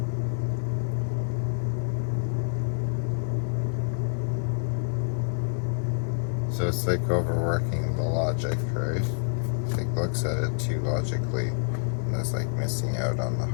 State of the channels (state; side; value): silent; right; digital silence